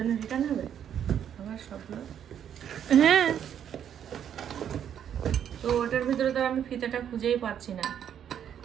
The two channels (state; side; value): quieter; left; 9.2 dB